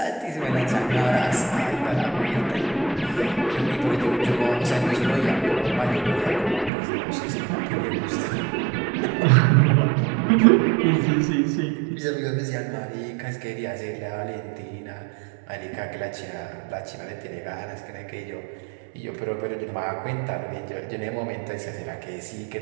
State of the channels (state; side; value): drops out; left; at 6.7 s